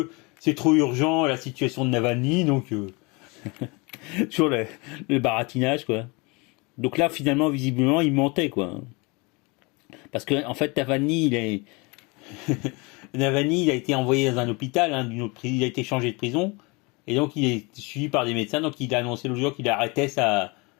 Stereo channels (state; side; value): quieter; right; 27.8 dB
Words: c'est trop urgent la situation de Navalny, donc sur le baratinage, quoi. Donc là finalement visiblement il mentait, quoi. Parce que en fait Navalny il a été envoyé dans un hôpital, hein, il a été changé de prison et donc il est suivi par des médecins, donc il a annoncé l'autre jour qu'il arrêtait sa